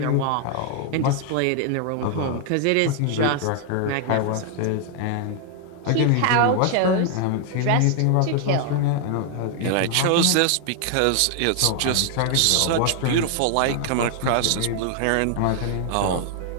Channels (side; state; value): both; different; correlation 0.00